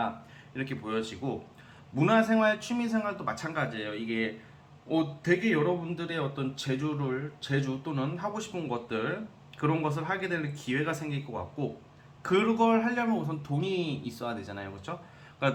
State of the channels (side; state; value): both; identical; correlation 1.00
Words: 이렇게 보여지고, 문화생활, 취미생활도 마찬가지예요. 이게 되게 여러분들의 어떤 재주 또는 하고 싶은 것들, 그런 것을 하게 될 기회가 생길 것 같고, 그걸 하려면 우선 돈이 있어야 되잖아요. 그렇죠?